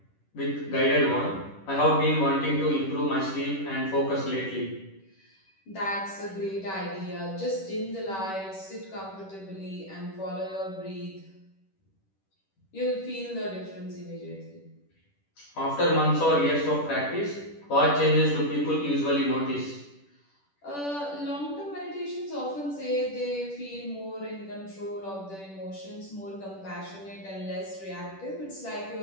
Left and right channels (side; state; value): right; late; 10 ms